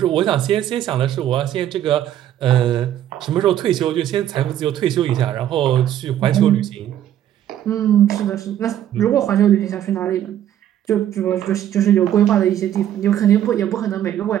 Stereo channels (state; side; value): quieter; left; 11.2 dB